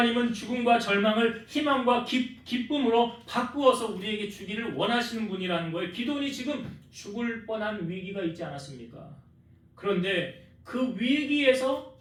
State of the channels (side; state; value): both; identical; correlation 1.00